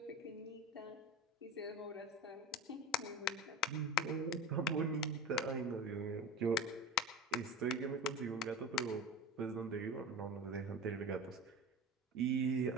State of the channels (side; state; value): both; normal; correlation 0.31